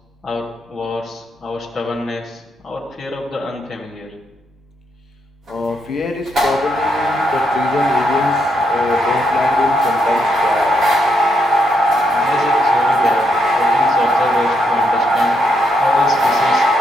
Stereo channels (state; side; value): normal; both; correlation 0.78